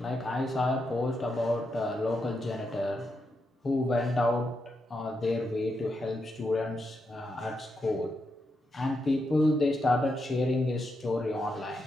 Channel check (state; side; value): normal; both; correlation 0.84